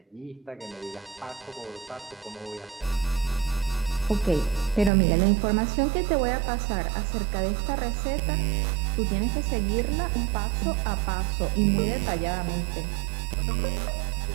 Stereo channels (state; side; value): drops out; left; at 4.9 s